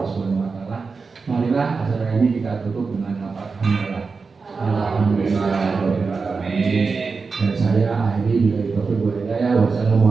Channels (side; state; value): left; quieter; 4.6 dB